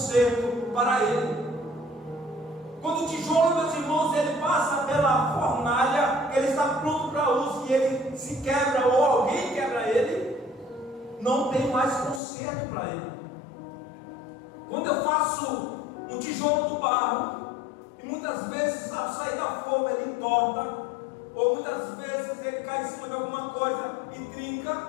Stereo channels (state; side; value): drops out; right; at 12.2 s